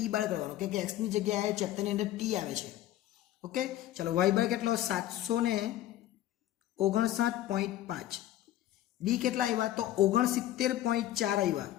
બાર કરવાનો, કેમ કે એક્સની જગ્યાએ ચેપ્ટરની અંદર ટી આવે છે. ઓકે, ચલો વાય બાર કેટલો? 759.5. બી કેટલા આવ્યા તો 69.4 આવ્યા,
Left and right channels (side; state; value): right; quieter; 13.5 dB